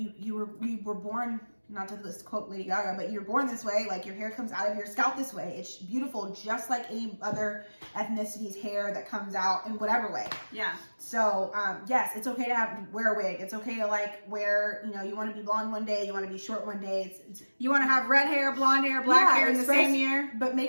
were born, not to this quote Lady Gaga, but you're born this way. Like your hair comes out of your scalp this way. It's beautiful, just like any other ethnicity's hair that comes out in whatever way. Yeah. So yes, it's okay to wear a wig. It's okay to like wear, you know, you want to be blonde one day, you want to be short one day. You want to have red hair, blonde hair, black hair in the same year. But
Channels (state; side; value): inverted; both; correlation -1.00